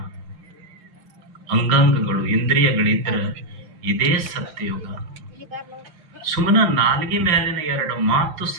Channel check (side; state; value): left; late; 6.2 ms